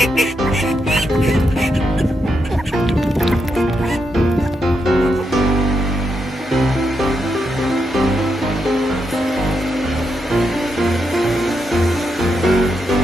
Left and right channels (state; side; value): normal; both; correlation 0.82